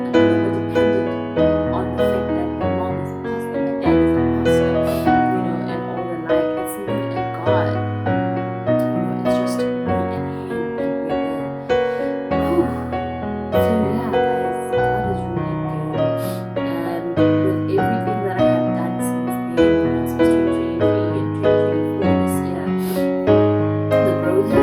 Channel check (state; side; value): identical; both; correlation 1.00